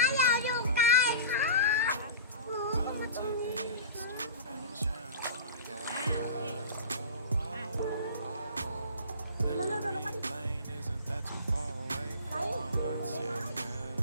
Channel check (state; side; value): inverted; both; correlation -0.37